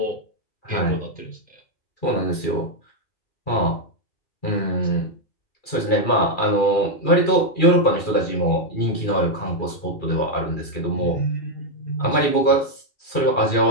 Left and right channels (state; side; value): late; right; 2.3 ms